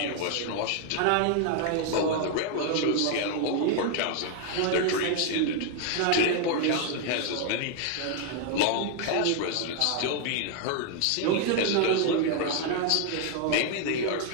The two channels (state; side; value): different; both; correlation 0.00